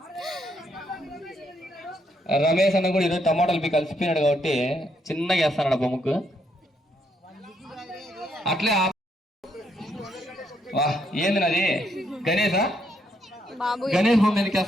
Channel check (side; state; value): both; normal; correlation 0.75